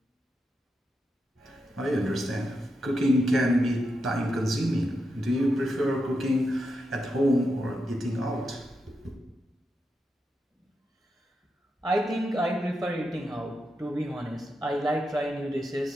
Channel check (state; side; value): normal; both; correlation 0.86